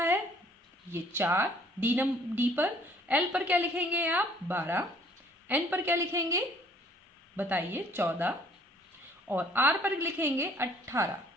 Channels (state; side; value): normal; both; correlation 0.59